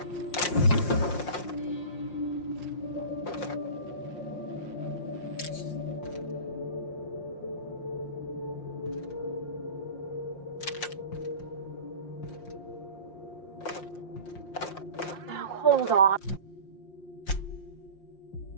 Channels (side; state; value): right; late; 5.6 ms